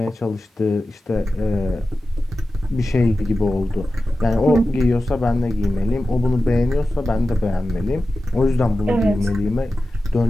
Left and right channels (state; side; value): normal; both; correlation 0.94